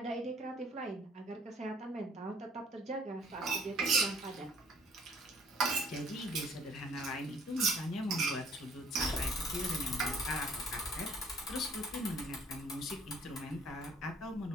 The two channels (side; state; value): both; normal; correlation 0.59